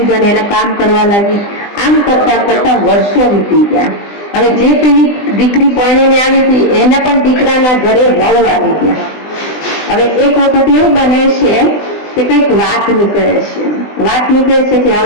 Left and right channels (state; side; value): late; right; 20 ms